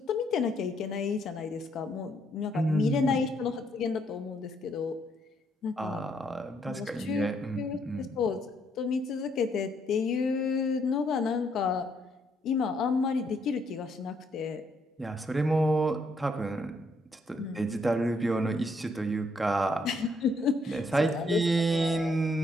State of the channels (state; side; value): normal; both; correlation 0.72